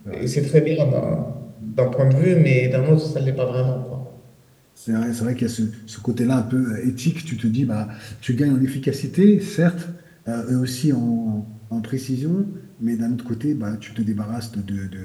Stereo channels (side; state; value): both; identical; correlation 1.00